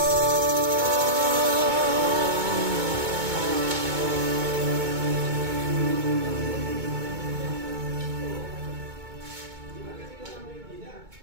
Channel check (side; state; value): left; late; 2.2 ms